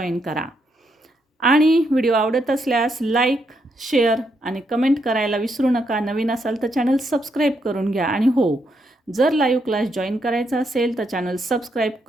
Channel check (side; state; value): both; normal; correlation 0.78